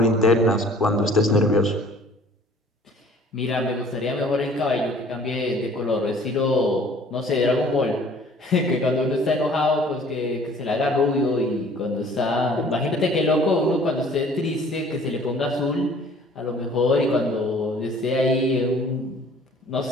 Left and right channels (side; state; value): both; normal; correlation 0.53